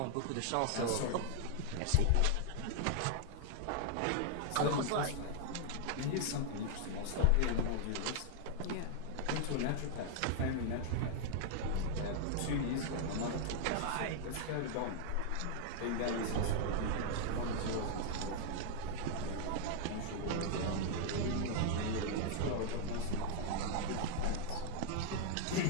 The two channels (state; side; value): different; both; correlation 0.00